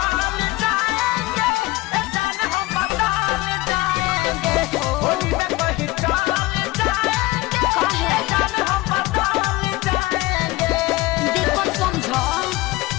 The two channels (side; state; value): right; quieter; 19.8 dB